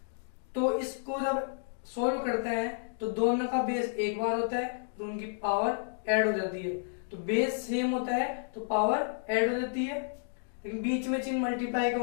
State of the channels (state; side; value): silent; right; digital silence